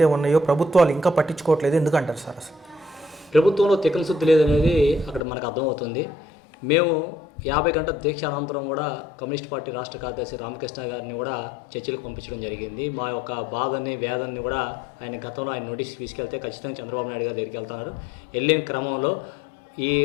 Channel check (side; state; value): right; drops out; at 5.2 s